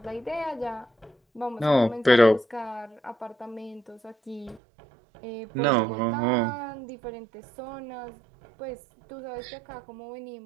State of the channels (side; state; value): left; drops out; at 4.6 s